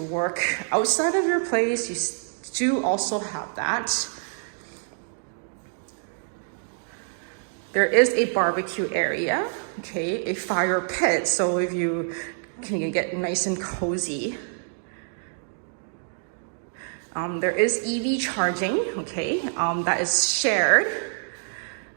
work outside of your place, you do also have that. There is a barbecue area, okay, a fire pit, so if you can get nice and cozy. There is EV charging, okay, that is shared.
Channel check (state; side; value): silent; left; digital silence